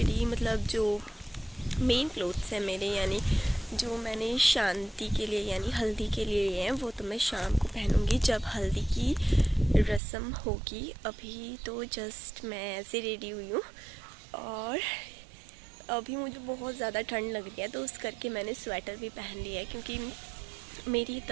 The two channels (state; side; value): drops out; left; at 10.0 s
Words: मतलब जो मेन क्लोथ्स हैं मेरे, यानी जो मैंने शांति के लिए यानी हल्दी के लिए लिए हैं, वो तो मैं शाम को पहनूंगी जब हल्दी की रस्म होगी। अभी तो जस्ट मैं ऐसे रेडी हुई हूँ, और अभी मुझे बहुत ज़्यादा ठंड लग रही है, तो उस करके मैंने स्वेटर भी पहन लिया है, क्योंकि मेरी